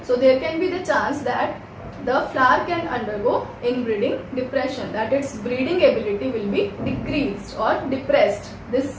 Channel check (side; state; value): both; identical; correlation 1.00